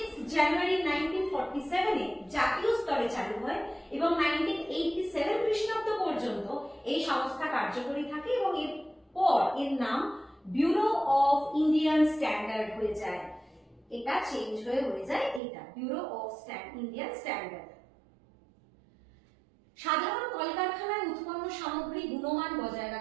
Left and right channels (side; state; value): left; drops out; at 15.4 s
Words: জানুয়ারি 1947 এ জাতীয় স্তরে চালু হয় এবং 1987 খ্রিস্টাব্দ পর্যন্ত এই সংস্থা কার্যকরী থাকে এবং এরপর এর নাম ব্যুরো অফ ইন্ডিয়ান স্ট্যান্ডার্ড হয়ে যায়। এটা চেঞ্জ হয়ে যায় এটা ব্যুরো অফ ইন্ডিয়ান স্ট্যান্ডার্ড। সাধারণ কলকারখানায় উৎপন্ন সামগ্রী গুণমান বজায়